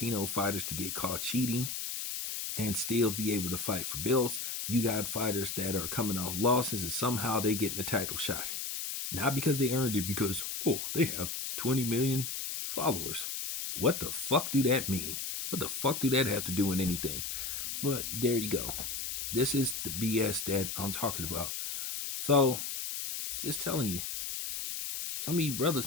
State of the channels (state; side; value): noise; left; hiss, 4 dB below the sound